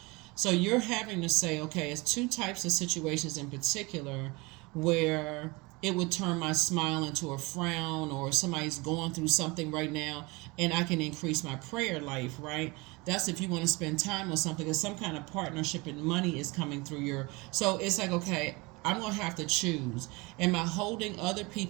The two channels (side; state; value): left; quieter; 25.3 dB